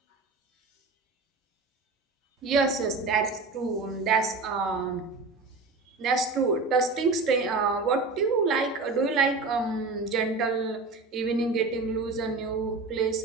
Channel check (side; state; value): left; quieter; 3.8 dB